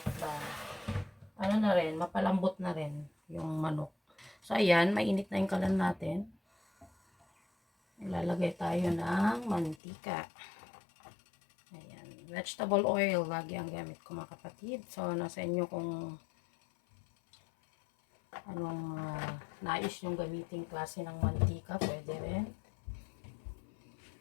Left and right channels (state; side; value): drops out; right; at 9.8 s